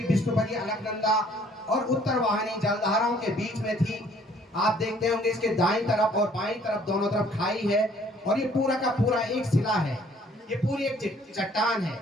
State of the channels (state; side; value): normal; both; correlation 0.59